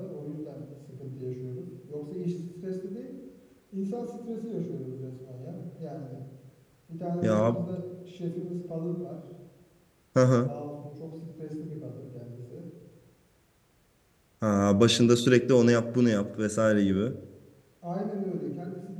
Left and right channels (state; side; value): identical; both; correlation 1.00